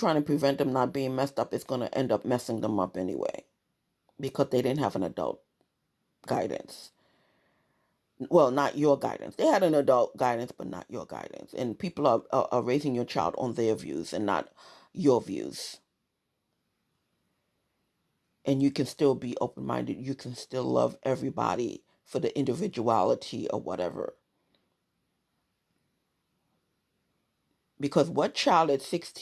to prevent them not being messed up is going to end up messing them up anyway because they didn't have an adult guidance. Well, not your guidance. They had an adult guidance, but not your guidance. And people are raising your child on their views and not your views. And you can still be open-minded. You can still love everybody for the individuality or whatever. Because what child at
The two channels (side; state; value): both; identical; correlation 1.00